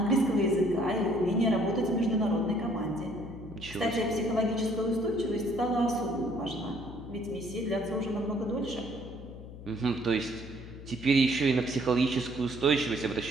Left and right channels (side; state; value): left; noise; hum, 14 dB below the sound